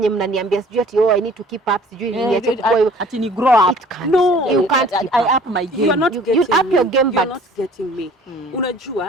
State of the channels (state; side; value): normal; both; correlation 0.51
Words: mnaniambia sijui ati I need to keep up, sijui niache kukua, Ati ni grow up. it can't. No, You can't keep I up. up my game. you are not You getting up your me. game, You're but- not getting me.